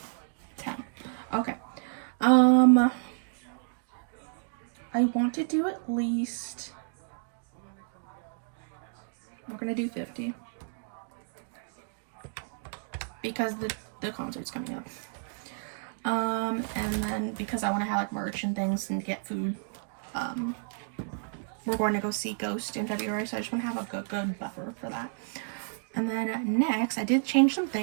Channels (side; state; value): left; silent; digital silence